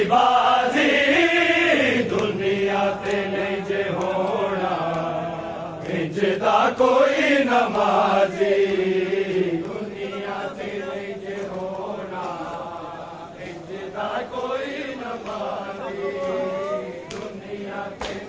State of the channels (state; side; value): identical; both; correlation 1.00